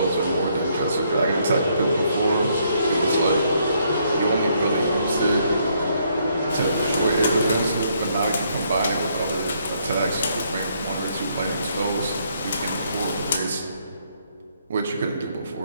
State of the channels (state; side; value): inverted; both; correlation -0.71